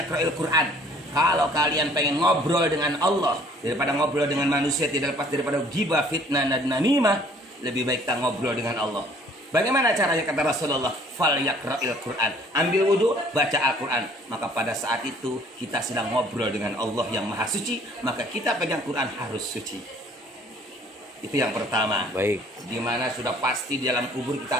Quran. Kalau kalian pengen ngobrol dengan Allah daripada ngobrol dengan manusia, tidak lepas daripada ghibah, fitnah, dan namimah, lebih baik kita ngobrol dengan Allah. Bagaimana caranya kata Rasulullah? Falyaqra'il Quran. Ambil wudhu, baca Al-Quran. Maka pada saat itu kita sedang ngobrol dengan Allah yang maha suci. Maka kita pegang Quran harus suci. Itu yang pertama. Baik. Dimana sudah pasti di dalam kubur kita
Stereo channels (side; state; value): both; normal; correlation 0.56